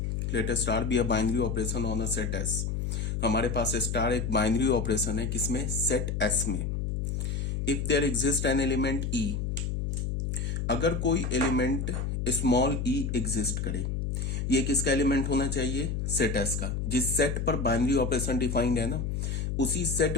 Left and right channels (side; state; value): left; noise; hum, 1 dB below the sound